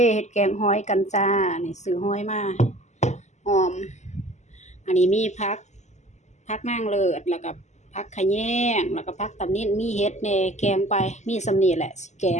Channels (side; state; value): right; late; 0.33 ms